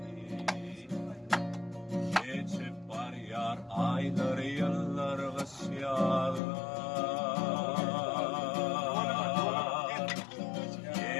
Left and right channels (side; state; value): right; drops out; at 6.4 s